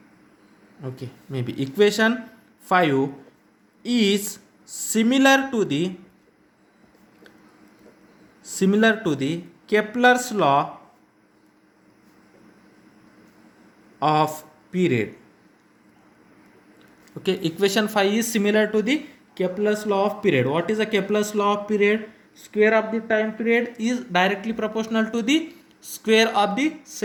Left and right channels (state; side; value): identical; both; correlation 1.00